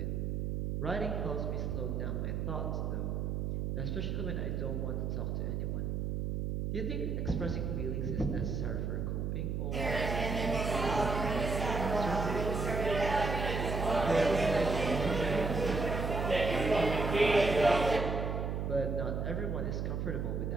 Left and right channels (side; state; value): right; noise; hum, 1 dB below the sound